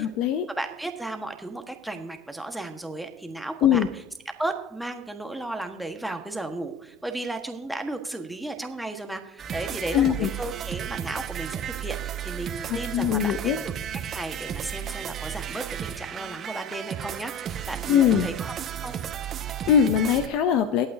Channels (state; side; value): quieter; right; 3.7 dB